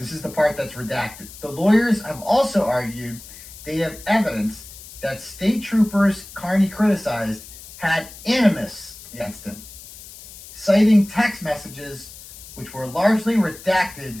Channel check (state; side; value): noise; left; hiss, 17 dB below the sound